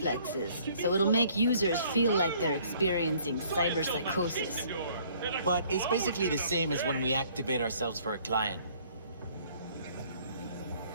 so it'll make users feel like they're experiencing cyberpsychosis. But it's basically the same as when we activate ourselves for a client.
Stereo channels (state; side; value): inverted; both; correlation -0.59